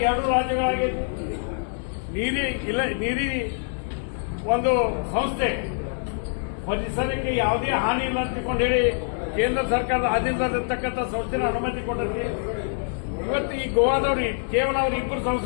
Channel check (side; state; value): right; silent; digital silence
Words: ಎರಡು ರಾಜ್ಯಗಳಾಗೈತಿ. ನೀರಿ ಒಂದು ಸಂಸ್ಥೆ ಪರಿಸರಕ್ಕೆ ಯಾವುದೇ ಹಾನಿ ಇಲ್ಲ ಅಂತ ಹೇಳಿ ಕೇಂದ್ರ ಸರ್ಕಾರದ ಆಧೀನದಲ್ಲಿರ್ತಕ್ಕಂಥ ಸಂಸ್ಥೆನ ಅನುಮತಿ ಕೊಟ್ಟೈತಿ. ಇವತ್ತು ಈ ಗೋವಾದವ್ರು ಕೇವಲ ಅವ್ರು ಇಬ್ಬರು